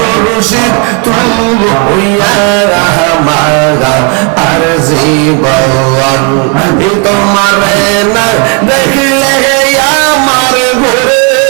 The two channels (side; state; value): left; quieter; 33.2 dB